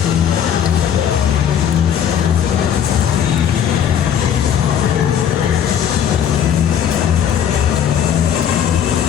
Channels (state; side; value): quieter; right; 8.9 dB